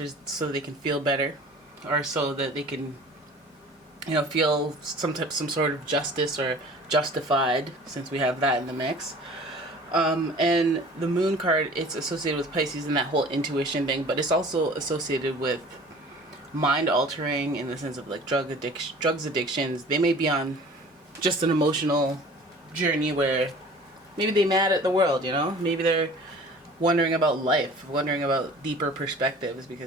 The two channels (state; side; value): normal; both; correlation 0.45